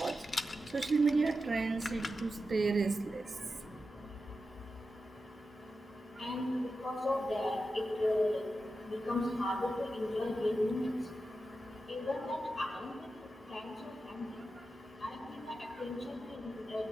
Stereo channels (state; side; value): normal; both; correlation 0.91